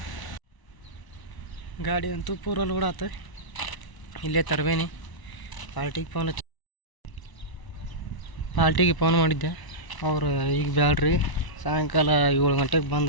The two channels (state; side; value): late; right; 1.0 ms